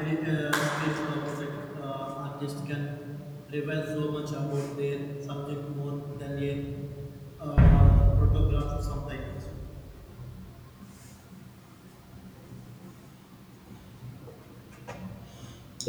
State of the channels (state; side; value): identical; both; correlation 1.00